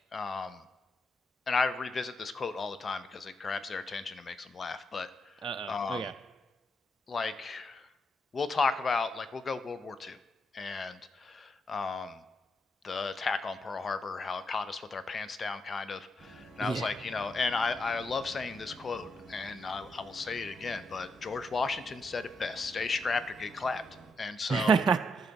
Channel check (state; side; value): normal; both; correlation 0.80